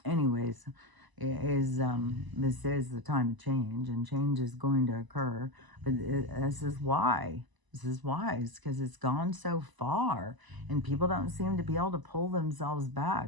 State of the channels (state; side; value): late; left; 1.0 ms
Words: anyways, this is the time of change, and change is going to occur. But this is why. This is why. It's because it's gone so far, and people don't seem to be able to pull themselves